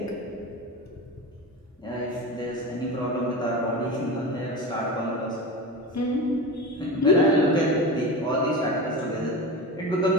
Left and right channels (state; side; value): normal; both; correlation 0.26